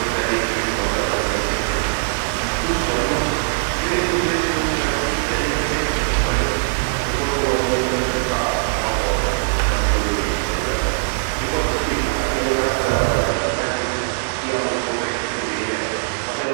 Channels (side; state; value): left; silent; 57 dB below the other